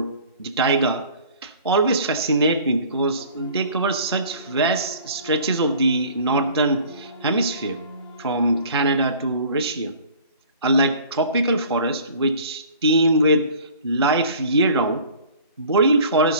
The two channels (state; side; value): inverted; both; correlation -0.48